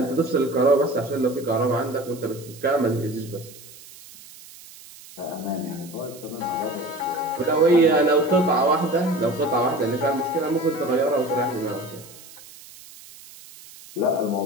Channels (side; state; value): right; noise; hiss, 19 dB below the sound